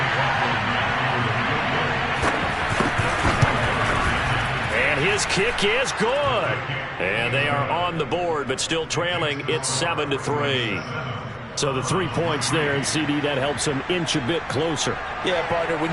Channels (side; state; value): both; identical; correlation 1.00